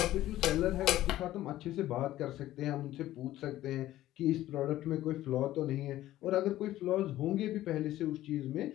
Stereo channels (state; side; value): quieter; right; 14.5 dB